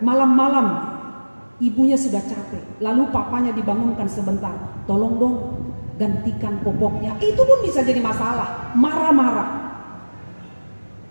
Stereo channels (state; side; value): inverted; both; correlation -1.00